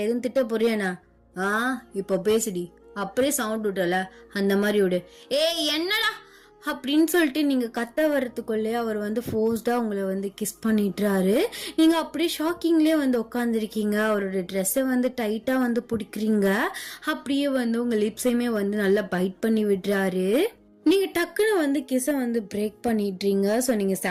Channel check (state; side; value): identical; both; correlation 1.00